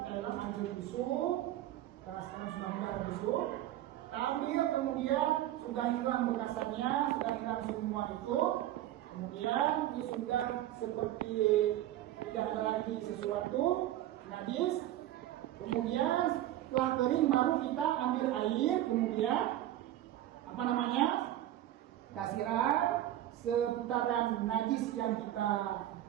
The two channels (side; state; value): left; quieter; 13.4 dB